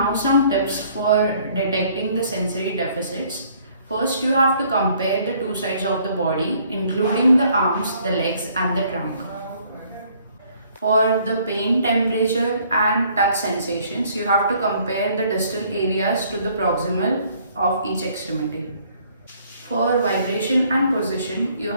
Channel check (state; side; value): inverted; both; correlation -0.62